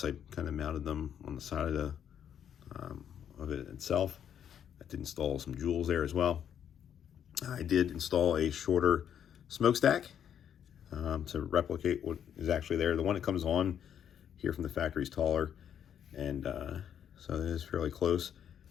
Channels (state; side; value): quieter; right; 9.1 dB